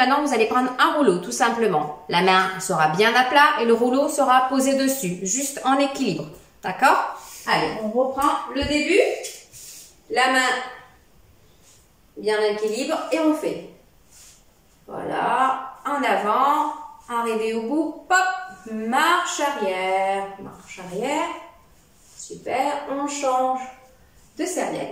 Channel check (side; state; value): both; identical; correlation 1.00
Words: vous allez prendre un rouleau, tout simplement. La main sera bien à plat et le rouleau sera posé dessus, juste en équilibre. D'accord? Allez, on reprend le début. La main bien en équilibre et on fait. Voilà. En avant, arrivé au bout, pop, marche arrière, super, on change de